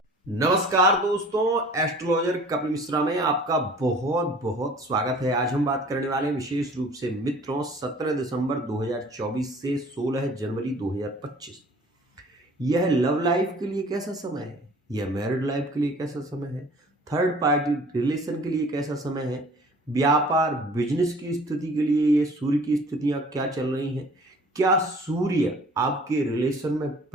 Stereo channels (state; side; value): normal; both; correlation 0.49